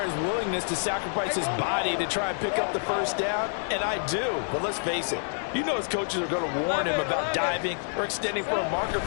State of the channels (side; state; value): right; silent; digital silence